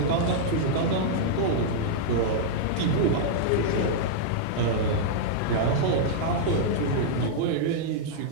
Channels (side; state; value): both; different; correlation -0.02